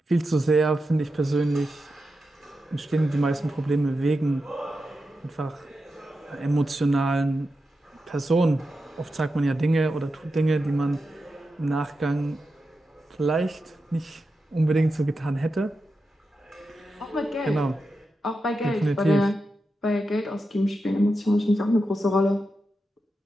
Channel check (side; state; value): both; normal; correlation 0.89